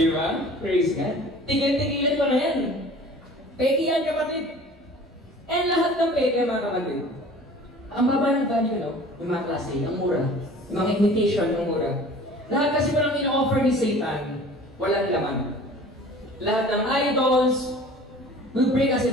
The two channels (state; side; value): normal; both; correlation 0.45